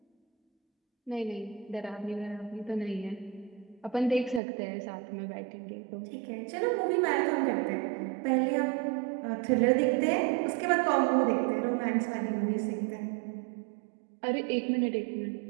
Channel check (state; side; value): drops out; left; at 4.4 s